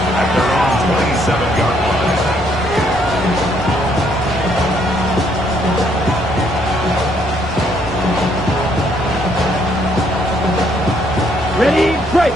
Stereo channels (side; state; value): both; normal; correlation 0.69